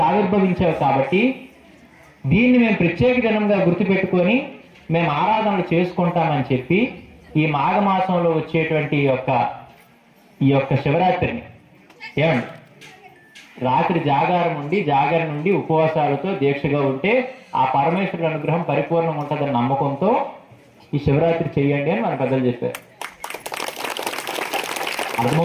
ఆవిర్భవించావు. కాబట్టి దీన్ని మేము ప్రత్యేక దినంగా గుర్తుపెట్టుకొని మేము ఆరాధనలు చేసుకుంటామని చెప్పి ఈ మాఘమాసంలో వచ్చేటువంటి ఈ యొక్క శివరాత్రిని ఏమండి రాత్రి జాగారం నుండి ఉపవాసాలతో దీక్షగా ఉంటే ఆ పరమేశ్వరుడి అనుగ్రహం పరిపూర్ణం ఉంటుందని నమ్మకంతో ఈ శివరాత్రి చెయ్యండి అని మన పెద్దలు చెప్పారు.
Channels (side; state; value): both; identical; correlation 1.00